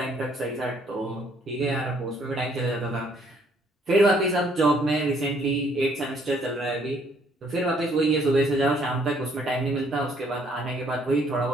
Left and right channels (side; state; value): both; normal; correlation 0.65